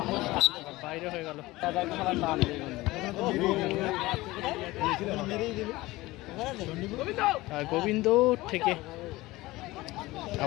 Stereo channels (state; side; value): quieter; right; 19.4 dB